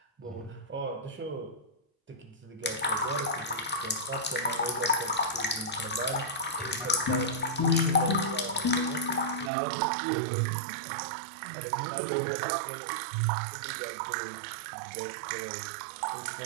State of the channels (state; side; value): drops out; left; at 9.5 s